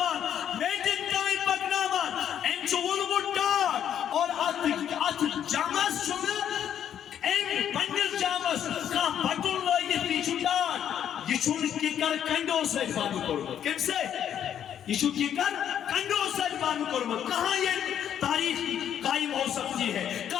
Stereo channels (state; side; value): quieter; right; 9.6 dB